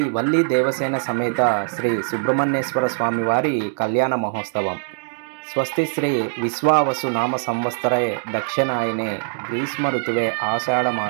వల్లి దేవసేన సమేత శ్రీ సుబ్రహ్మణ్యేశ్వర స్వామి వారి కళ్యాణ మహోత్సవం. స్వస్తి శ్రీ విశ్వావసు నామ సంవత్సరే దక్షిణాయనే గ్రీష్మ ఋతువే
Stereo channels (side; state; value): left; silent; digital silence